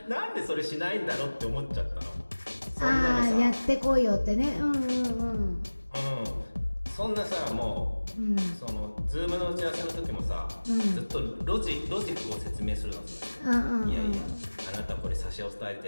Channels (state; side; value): inverted; both; correlation -1.00